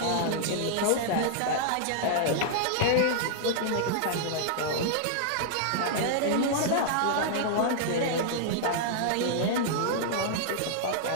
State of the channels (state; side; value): different; both; correlation -0.01